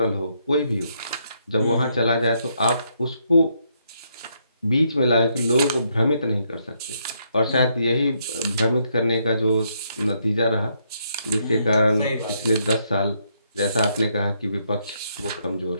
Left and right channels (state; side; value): inverted; both; correlation -0.75